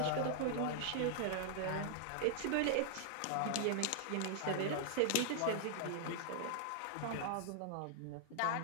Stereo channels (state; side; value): different; both; correlation 0.00